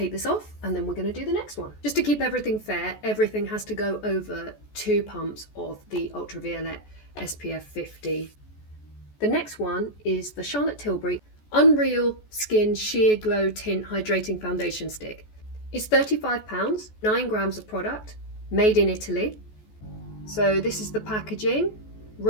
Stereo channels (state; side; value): late; right; 14 ms